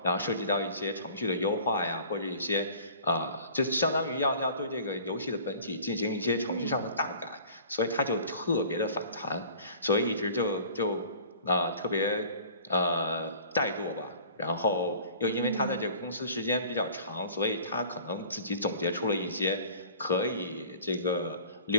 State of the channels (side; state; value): both; inverted; correlation -0.47